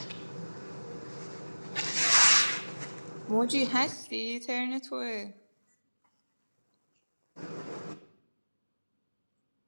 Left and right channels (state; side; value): inverted; both; correlation -1.00